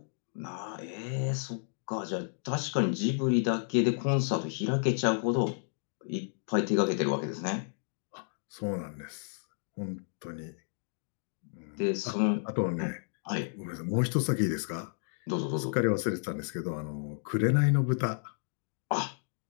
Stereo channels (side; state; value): right; silent; digital silence